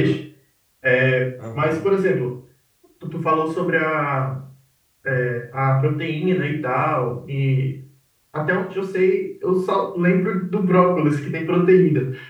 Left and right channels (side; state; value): both; identical; correlation 1.00